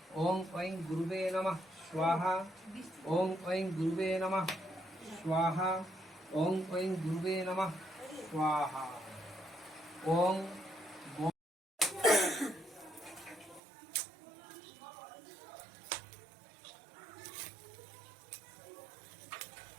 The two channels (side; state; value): left; drops out; at 13.6 s